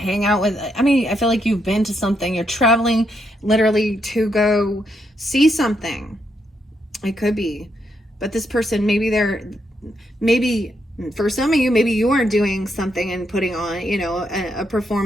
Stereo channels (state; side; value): normal; both; correlation 0.79